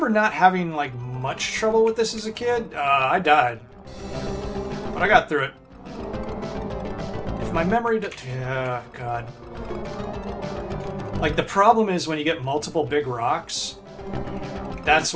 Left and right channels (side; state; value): both; identical; correlation 1.00